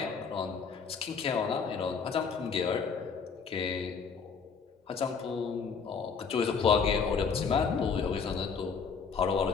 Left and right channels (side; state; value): right; quieter; 5.7 dB